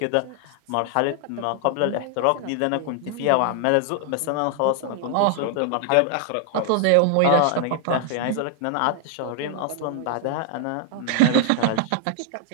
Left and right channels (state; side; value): different; both; correlation 0.00